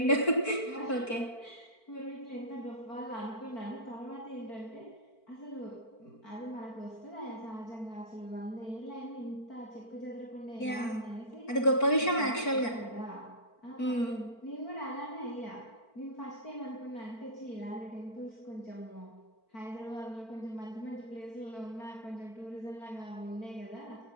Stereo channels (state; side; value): late; right; 4.5 ms